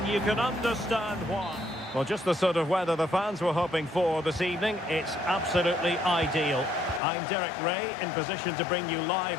you can understand why. Well, just the sort of weather the fans were hoping for this evening. It's absolutely ideal. I'm Derek Ray, in position to bring you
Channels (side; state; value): right; drops out; at 7.0 s